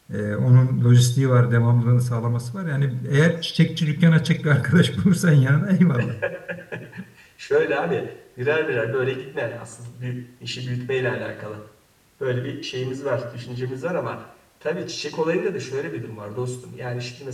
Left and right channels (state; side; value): identical; both; correlation 1.00